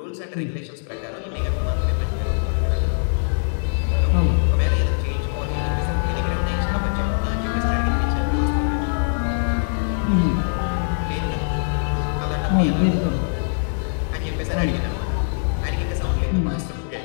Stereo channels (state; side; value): silent; right; digital silence